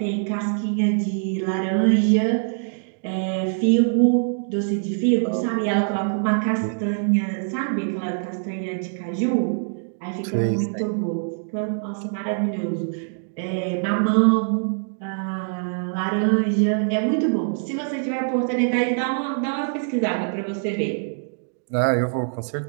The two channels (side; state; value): left; silent; digital silence